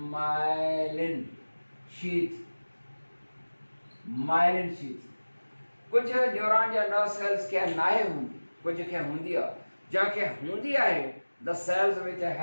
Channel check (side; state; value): both; inverted; correlation -1.00